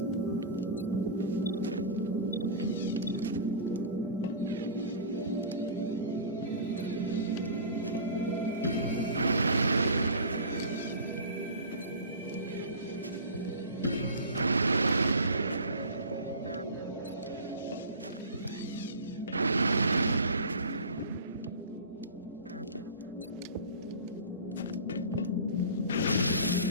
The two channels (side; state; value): both; inverted; correlation -0.35